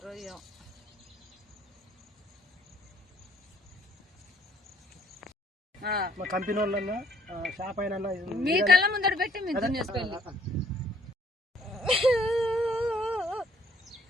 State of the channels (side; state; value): both; normal; correlation 0.63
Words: ఏమో. మా కంపెనీ వాళ్ళన్నా షాప్ అయినా మీ కళ్ళ ముందర పెట్టి మీరు దున్నేసుకోండి.